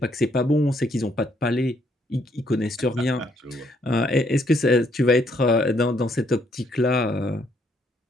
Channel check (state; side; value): normal; both; correlation 0.70